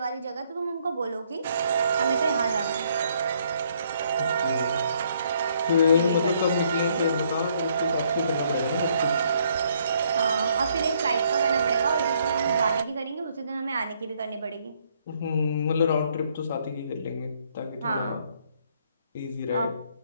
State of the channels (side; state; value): both; inverted; correlation -0.68